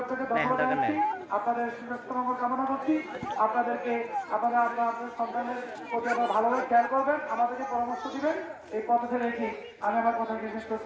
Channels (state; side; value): identical; both; correlation 1.00